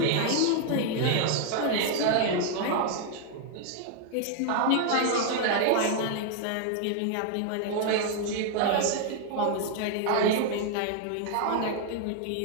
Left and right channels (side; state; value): both; different; correlation 0.00